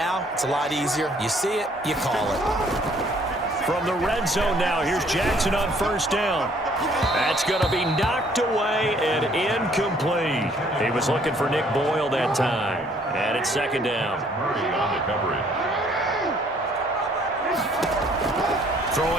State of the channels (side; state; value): both; normal; correlation 0.62